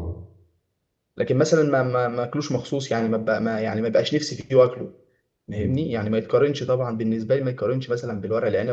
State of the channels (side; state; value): both; identical; correlation 1.00